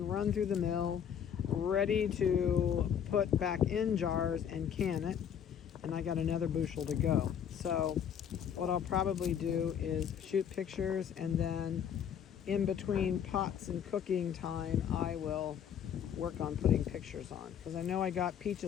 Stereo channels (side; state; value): right; quieter; 8.6 dB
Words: run through the mill, ready to put back in jars and can it. And I got another bushel to go. So what I'll probably do is shoot pictures, and then in between pots and cooking time, I will work on putting pictures on. Because I know I got